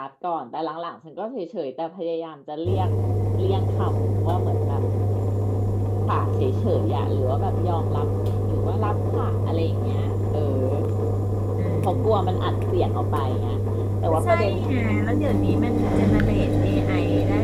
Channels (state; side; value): identical; both; correlation 1.00